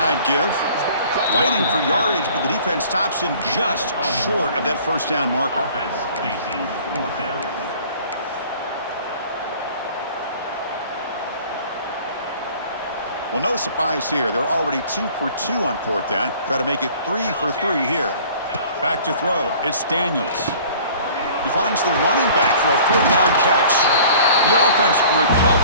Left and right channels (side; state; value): both; inverted; correlation -0.49